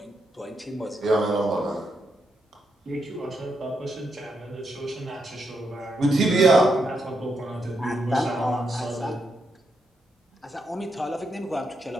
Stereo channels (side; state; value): both; normal; correlation 0.82